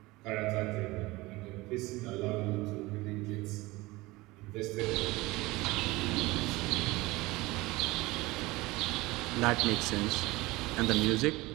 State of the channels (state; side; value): quieter; left; 21.0 dB